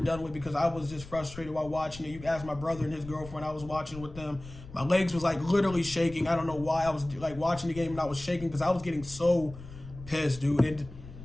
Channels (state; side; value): noise; left; rumble, 15 dB below the sound